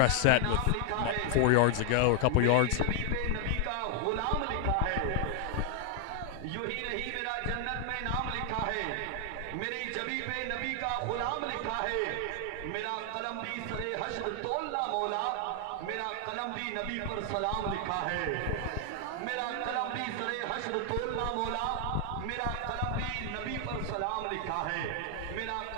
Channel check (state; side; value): different; both; correlation 0.00